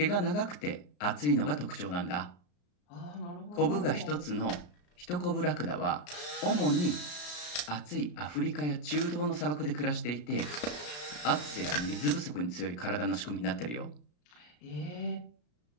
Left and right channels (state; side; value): late; right; 34 ms